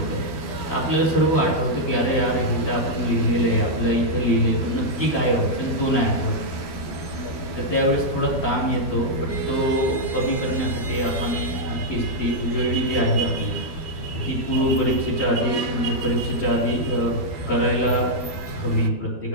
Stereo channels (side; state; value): right; late; 12 ms